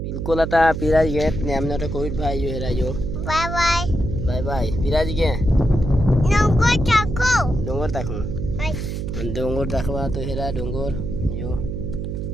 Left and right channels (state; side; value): noise; right; hum, 4 dB below the sound